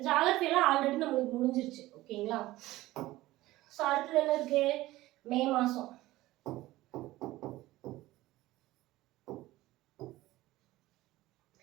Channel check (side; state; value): left; quieter; 17.3 dB